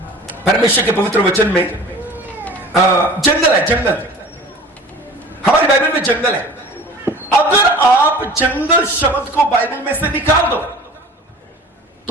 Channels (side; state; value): both; normal; correlation 0.43